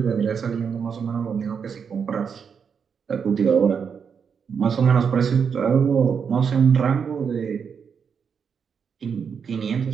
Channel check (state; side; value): quieter; left; 6.6 dB